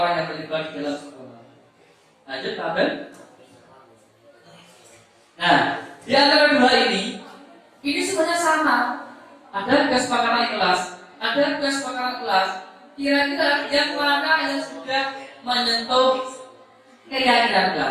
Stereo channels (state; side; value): identical; both; correlation 1.00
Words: yang terlibat di dalam sekolah. Lanjut, Pak Ben. Nah, di antara dua ini sebenarnya sama. Ada kesepakatan kelas, ada kesepakatan kelas. Kira-kira yang mana yang sudah menyentuh keyakinan